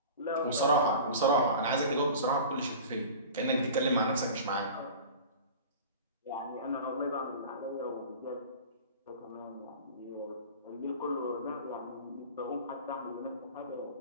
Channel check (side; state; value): both; inverted; correlation -0.37